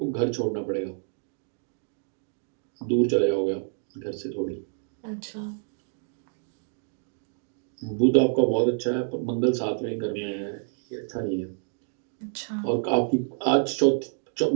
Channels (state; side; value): silent; left; 57 dB below the other